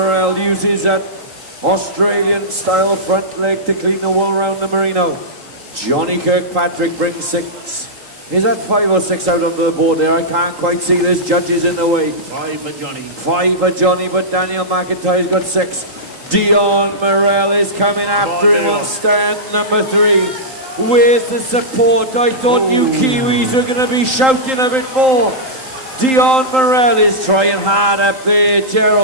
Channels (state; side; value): late; left; 3.8 ms